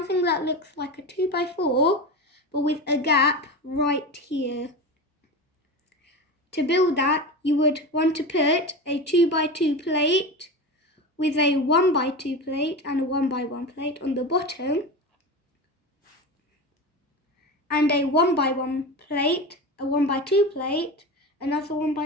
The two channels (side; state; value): both; normal; correlation 0.25